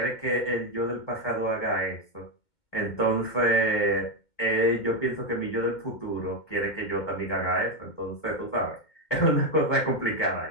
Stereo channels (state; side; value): late; right; 2.2 ms